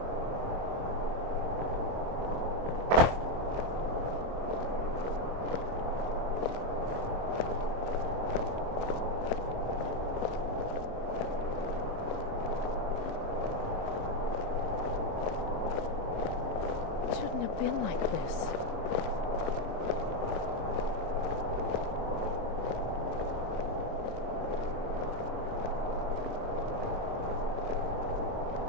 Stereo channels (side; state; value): left; late; 25 ms